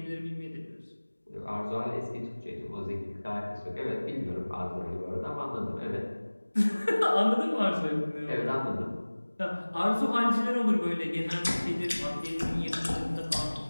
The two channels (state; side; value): inverted; both; correlation -1.00